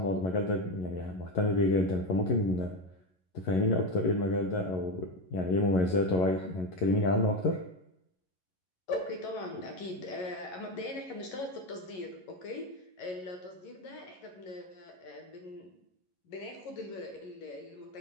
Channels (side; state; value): right; late; 11 ms